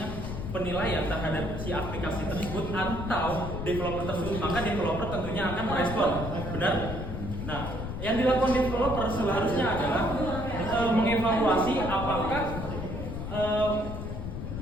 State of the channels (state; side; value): noise; left; rumble, 6 dB below the sound